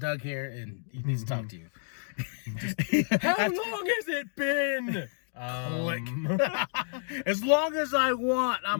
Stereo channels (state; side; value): silent; right; digital silence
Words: here and he needs to talk to you. How long has it been? As long as I want,